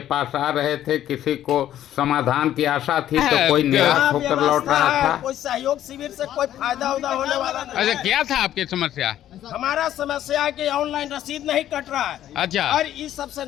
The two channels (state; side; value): quieter; right; 12.0 dB